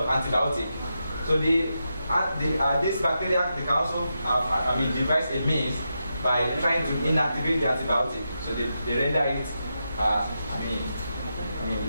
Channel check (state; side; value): inverted; both; correlation -0.87